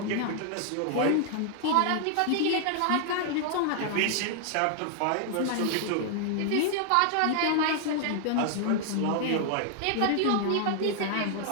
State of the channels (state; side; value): different; both; correlation 0.00